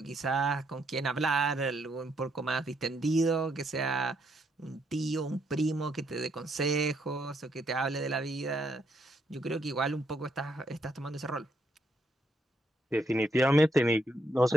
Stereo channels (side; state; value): both; normal; correlation 0.76